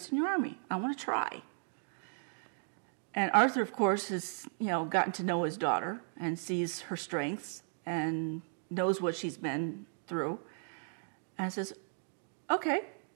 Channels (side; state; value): left; silent; digital silence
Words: in your army. I want to try. And Arthur, of course, has, gotten to know his daughter and sees her strengths and knows what she's been through. And says, okay,